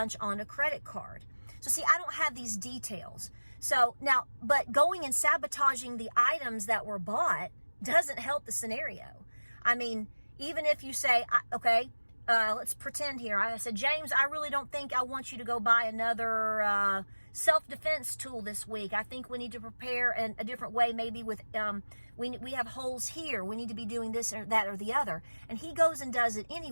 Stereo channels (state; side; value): inverted; both; correlation -1.00